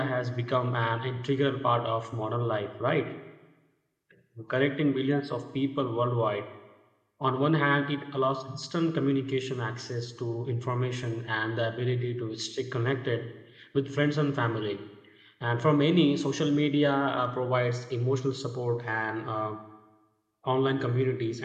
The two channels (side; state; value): both; identical; correlation 1.00